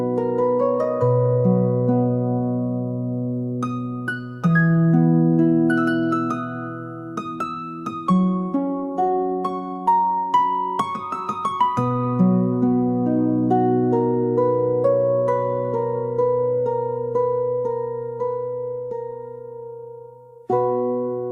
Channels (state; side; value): identical; both; correlation 1.00